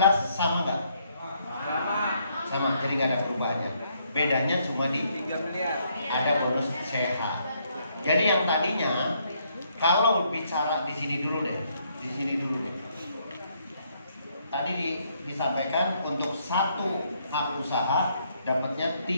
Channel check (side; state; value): both; inverted; correlation -0.71